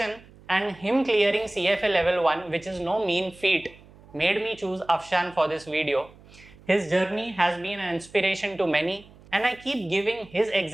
and him clearing CFA level 1, which is no mean feat, made me choose Afshan for this video. His journey has been an inspiration to many and I keep giving his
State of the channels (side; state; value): right; noise; hum, 24 dB below the sound